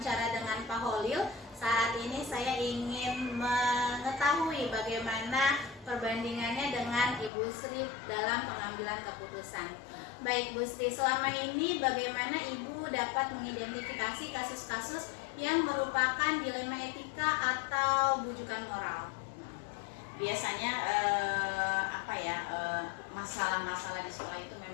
dengan Pak Holil. Saat ini saya ingin mengetahui bagaimana perbandingannya dengan Ibu Sri dalam pengambilan keputusan. Baik Bu Sri, selama ini bagaimana Ibu dapat mengidentifikasi kasus-kasus yang merupakan dilema etika atau bujukan moral? Biasanya masalah-masalah di sekolah itu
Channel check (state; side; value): drops out; right; at 7.3 s